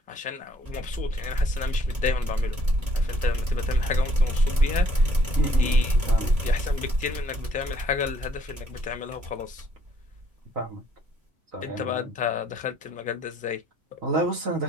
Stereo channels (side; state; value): left; late; 2.2 ms